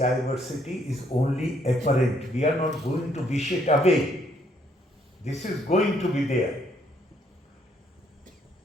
is only apparent. We are not going to wish it away. This is going to be there.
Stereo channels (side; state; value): both; normal; correlation 0.69